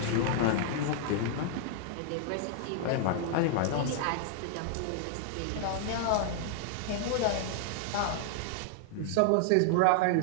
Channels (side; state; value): both; different; correlation -0.01